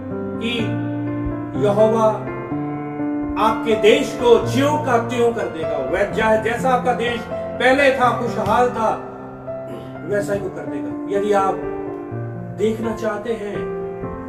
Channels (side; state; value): both; identical; correlation 1.00